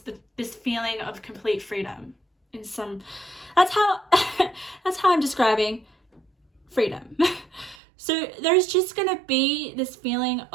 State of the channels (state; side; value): drops out; left; at 7.8 s